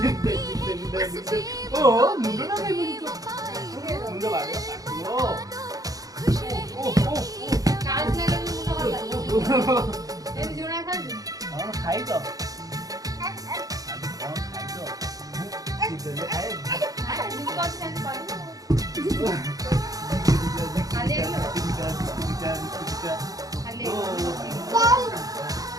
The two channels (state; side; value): late; left; 0.17 ms